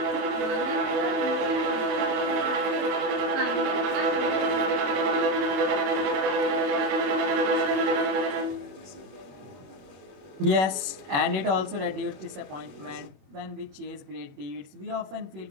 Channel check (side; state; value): left; late; 21 ms